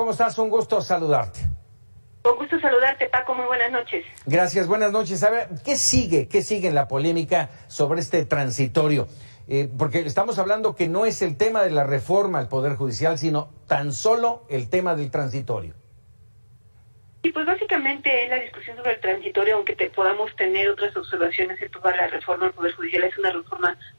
estás? Un gusto saludarte. Con gusto saludarte, Paco. Muy buenas noches. Gracias, buenas noches. A ver, ¿qué sigue en la polémica sobre este transitorio? Porque estamos hablando que no es el tema de la reforma al Poder Judicial, sino tan solo el tema del transitorio. Y pues básicamente en la discusión sobre el transitorio, aunque podamos tener otras observaciones en toda la reforma al Poder Judicial, es una reforma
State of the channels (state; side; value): inverted; both; correlation -1.00